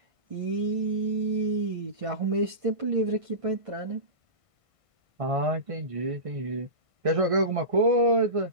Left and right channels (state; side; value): late; left; 1.5 ms